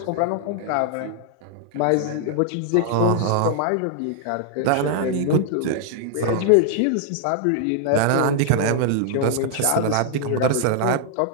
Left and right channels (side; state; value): both; different; correlation -0.01